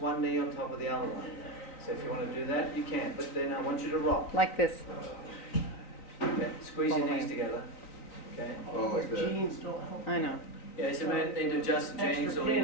knee on top of the other one. So if you want to do that, you can. But then I want you to rock. Like this. Okay. Squeeze All your the way. knees together. Okay. Oh, like this. Jeans don't help. I know. Yeah, so you may need to adjust the jeans Extra or, you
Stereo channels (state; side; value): late; right; 3.9 ms